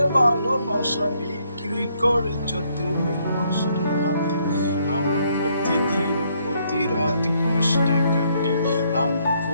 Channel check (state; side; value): inverted; both; correlation -0.71